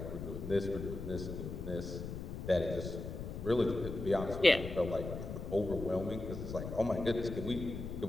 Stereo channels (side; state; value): left; noise; rumble, 7 dB below the sound